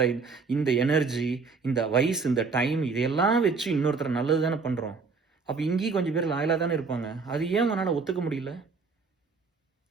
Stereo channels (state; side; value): quieter; left; 4.6 dB